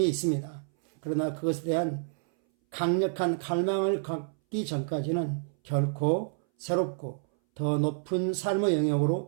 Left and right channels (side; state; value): left; silent; 59 dB below the other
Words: 있습니다. 그러나 그것에 대한 강력한 갈망을 갖기 전까지는 결코 새롭고 더 높은 삶의